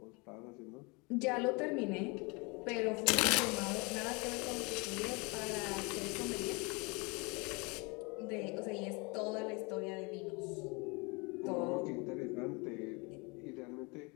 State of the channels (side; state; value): right; quieter; 29.0 dB